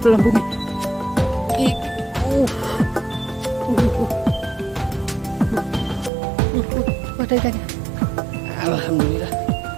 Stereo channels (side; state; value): left; drops out; at 6.1 s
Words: bumi. Ada ikannya. Alhamdulillah.